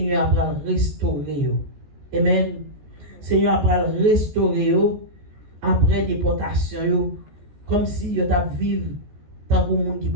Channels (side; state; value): left; late; 14 ms